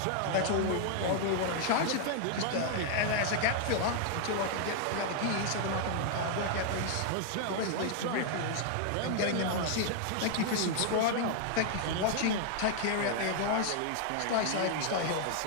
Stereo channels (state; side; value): different; both; correlation 0.00